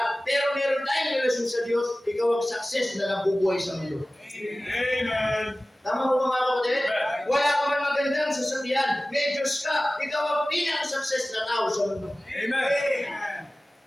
pero meron tayong relasyon sa Diyos, ikaw ang success na nabubuhay sa mundo. Amen. Tama po mga kapatid? Wala ka man magandang sasakyan, may Diyos ka, ikaw ang pinaka-success na tao sa mundo. Amen.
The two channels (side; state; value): both; normal; correlation 0.97